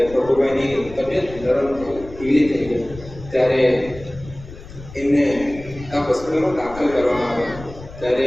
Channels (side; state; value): left; noise; rumble, 16 dB below the sound